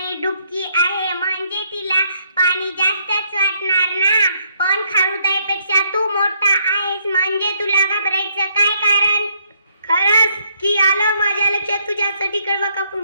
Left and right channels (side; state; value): both; inverted; correlation -0.71